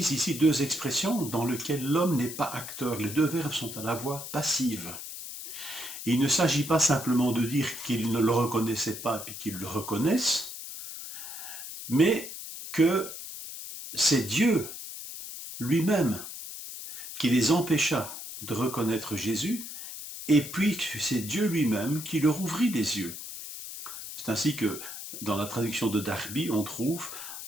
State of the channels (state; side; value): noise; left; hiss, 10 dB below the sound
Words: ici deux expressions dans lesquelles l'homme n'est pas acteur. Les deux verbes sont à la voix passive. Il ne s'agit pas simplement de dire qu'ils ne le reconnaissaient pas et qu'ils le reconnaissent, mais que c'est Dieu lui-même qui les empêcha de reconnaître Jésus, et puis c'est Dieu lui-même qui leur ouvrit les yeux. C'est ainsi que dans la traduction de Darby, on trouve